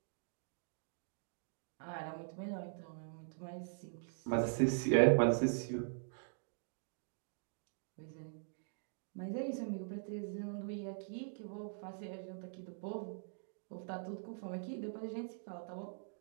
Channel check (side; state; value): left; silent; digital silence